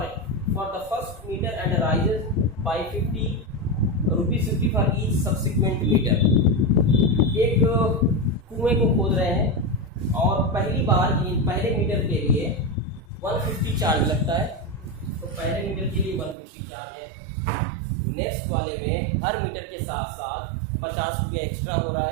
for the first metre and rises by ₹50 for each subsequent metre. एक कुएं को खोद रहे हैं और पहले मीटर के लिए 150 चार्ज लगता है, तो पहले मीटर के लिए 150 चार्ज है। नेक्स्ट वाले में हर मीटर के साथ साथ 50 रुपये एक्स्ट्रा हो रहा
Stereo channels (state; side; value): drops out; left; at 16.4 s